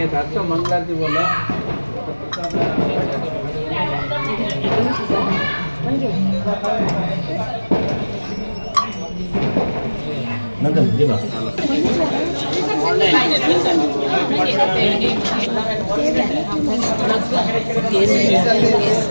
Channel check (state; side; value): inverted; both; correlation -1.00